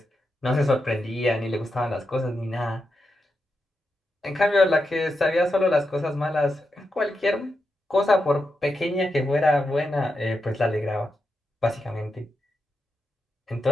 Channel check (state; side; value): normal; both; correlation 0.87